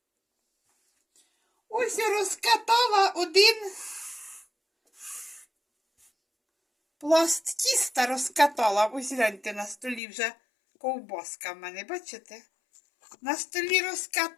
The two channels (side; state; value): right; drops out; at 10.0 s